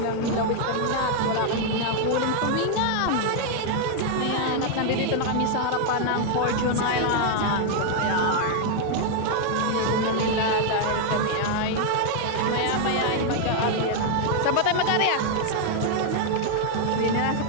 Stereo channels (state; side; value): different; both; correlation 0.00